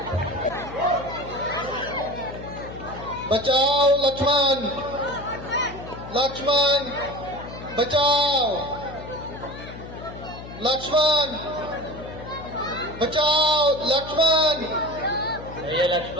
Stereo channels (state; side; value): noise; left; hum, 13 dB below the sound